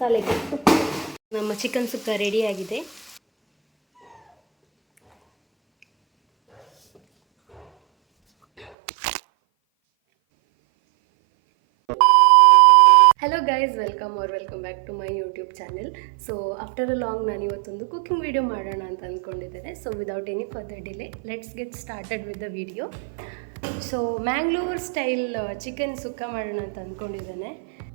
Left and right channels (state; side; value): drops out; left; at 8.8 s